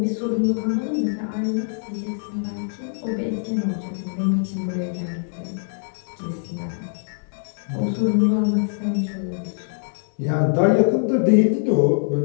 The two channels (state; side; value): silent; right; digital silence